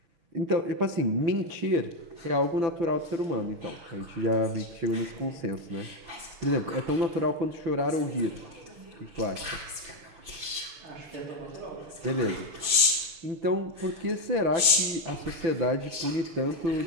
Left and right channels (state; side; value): late; left; 6.2 ms